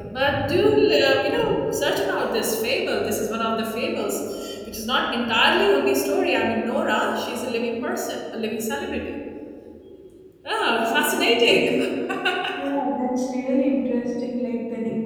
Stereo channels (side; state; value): both; identical; correlation 1.00